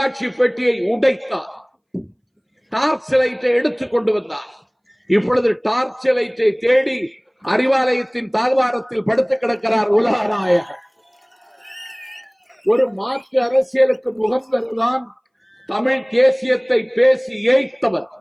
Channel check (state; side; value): identical; both; correlation 1.00